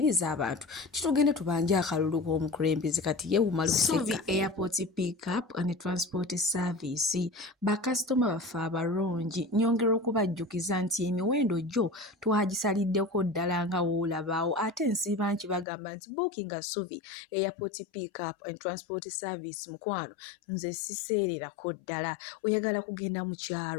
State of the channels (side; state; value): right; drops out; at 15.7 s